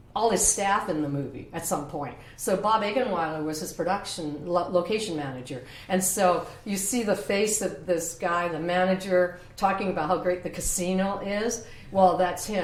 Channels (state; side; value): identical; both; correlation 1.00